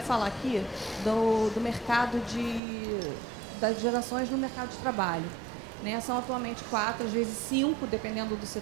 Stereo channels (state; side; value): drops out; left; at 2.6 s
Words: aqui do mercado das gerações no mercado de trabalho. Né? São atualmente 4, às vezes 5, dependendo do